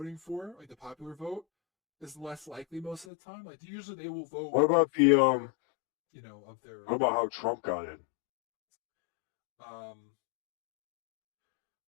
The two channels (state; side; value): drops out; right; at 3.1 s